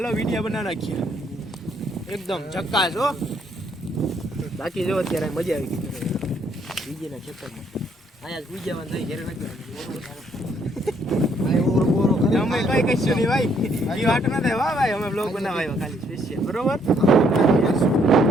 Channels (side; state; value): both; normal; correlation 0.68